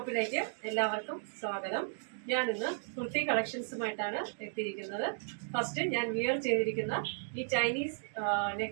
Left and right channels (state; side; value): silent; left; digital silence